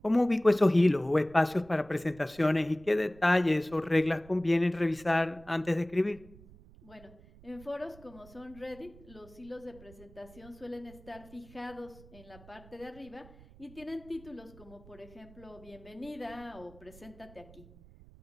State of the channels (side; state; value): right; noise; rumble, 22 dB below the sound